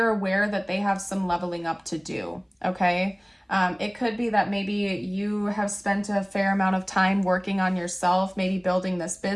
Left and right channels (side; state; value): both; identical; correlation 1.00